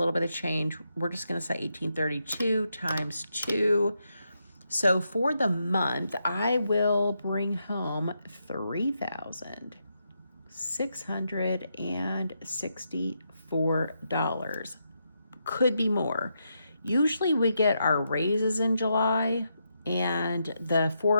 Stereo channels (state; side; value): inverted; both; correlation -0.82